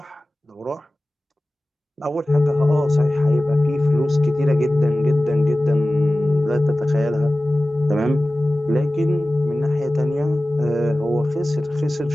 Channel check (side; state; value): both; normal; correlation 0.97